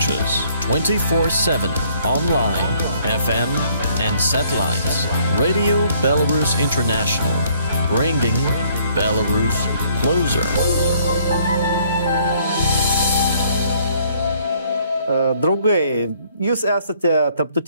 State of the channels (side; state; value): both; inverted; correlation -0.63